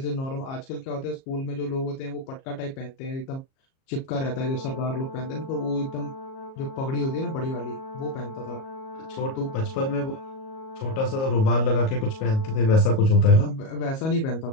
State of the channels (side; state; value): right; late; 37 ms